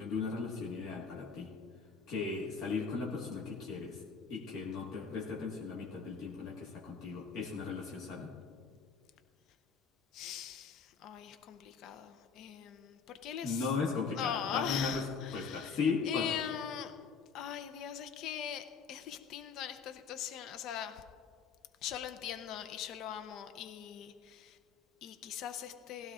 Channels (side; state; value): right; quieter; 5.7 dB